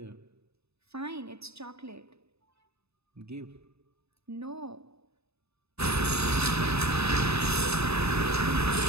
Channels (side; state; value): left; late; 0.79 ms